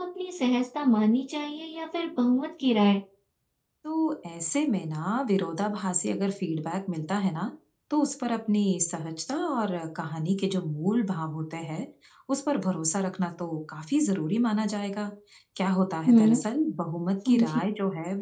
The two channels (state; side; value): identical; both; correlation 1.00